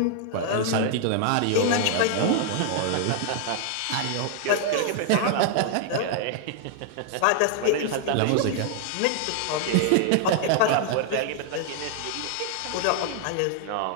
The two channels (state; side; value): different; both; correlation 0.00